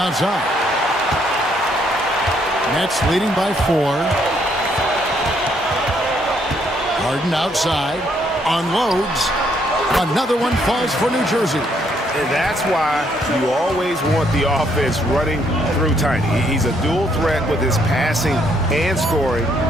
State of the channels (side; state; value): both; normal; correlation 0.70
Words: Nets leading by 4. Harden outside. Unloads. Another one falls for New Jersey. And that's why you always want the offense running through Tiny. He's a dual threat with his passing and scoring,